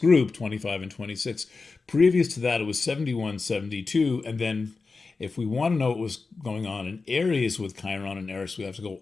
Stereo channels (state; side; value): quieter; right; 4.2 dB